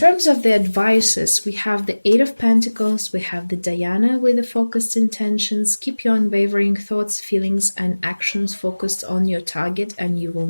of the advices, we have the 8 of Pentacles, we have the Diana with the focused intentions. Keep your unwavering thoughts, feelings, and actions focused on your target, and you will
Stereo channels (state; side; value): inverted; both; correlation -1.00